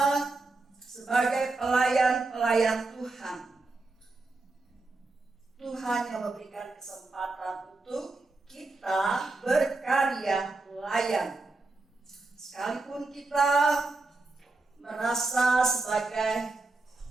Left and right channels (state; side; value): quieter; left; 3.4 dB